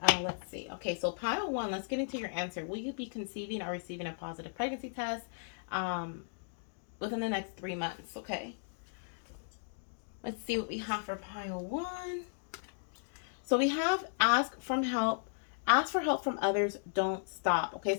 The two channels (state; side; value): silent; right; digital silence